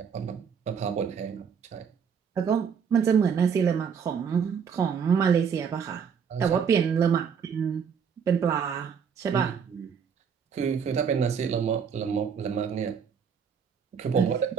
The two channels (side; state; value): left; quieter; 6.8 dB